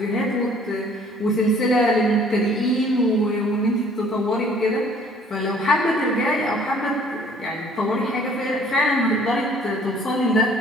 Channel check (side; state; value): both; normal; correlation 0.56